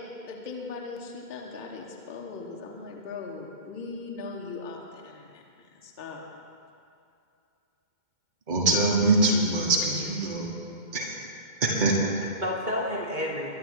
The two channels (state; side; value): late; left; 2.1 ms